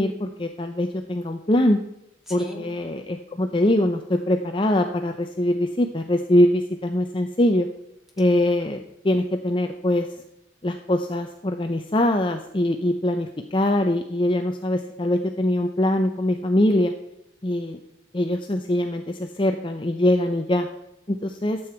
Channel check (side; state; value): both; normal; correlation 0.76